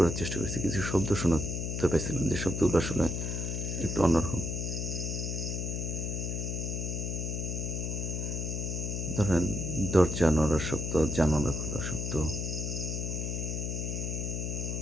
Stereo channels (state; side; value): noise; left; hum, 2 dB below the sound